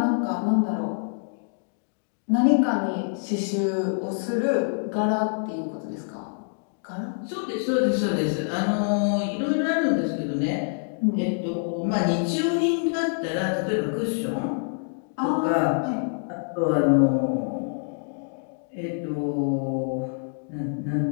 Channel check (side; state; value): right; silent; digital silence